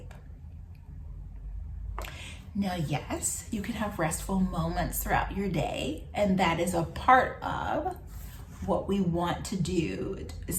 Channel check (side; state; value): both; identical; correlation 1.00